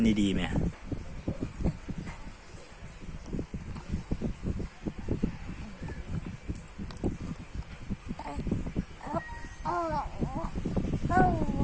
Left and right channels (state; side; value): identical; both; correlation 1.00